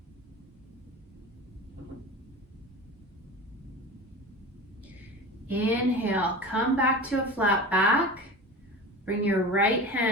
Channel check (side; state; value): both; normal; correlation 0.32